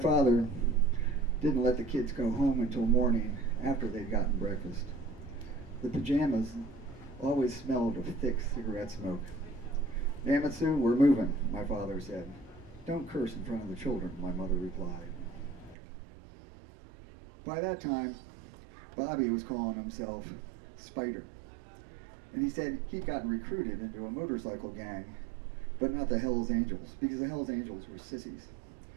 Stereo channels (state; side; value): drops out; left; at 15.8 s